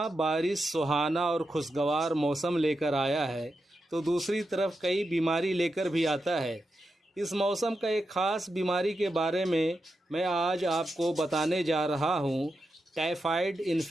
बारिश सुहाना और खुशगवार मौसम लेकर आया है, तो दूसरी तरफ कई बीमारी लेकर भी आता है। इस मौसम का एक ख़ास बीमारी के बारे में मैं आज आपको बताने जा रहा हूं, टाइफाइड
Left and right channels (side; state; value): both; normal; correlation 0.88